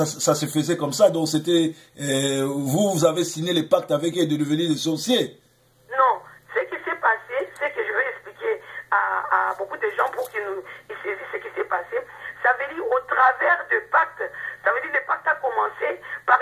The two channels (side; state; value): both; identical; correlation 1.00